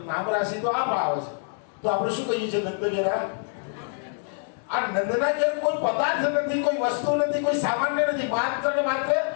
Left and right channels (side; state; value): right; silent; 61 dB below the other